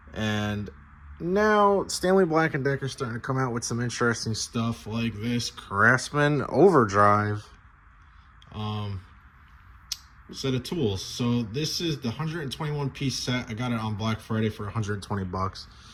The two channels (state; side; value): identical; both; correlation 1.00